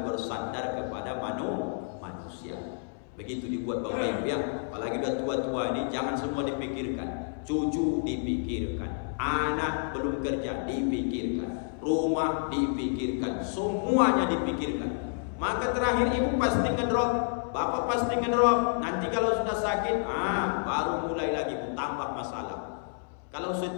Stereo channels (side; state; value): right; silent; 58 dB below the other